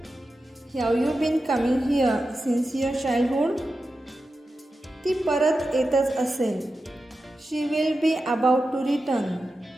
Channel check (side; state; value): both; normal; correlation 0.91